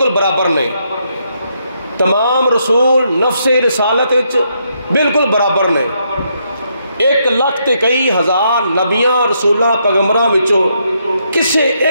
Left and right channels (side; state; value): both; inverted; correlation -0.77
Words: برابر نے، تمام رسول نفس رسالت وچ بالکل برابر نے۔ 1 لاکھ تے کئی ہزار نبیاں رسولاں پیغمبراں وچوں کسے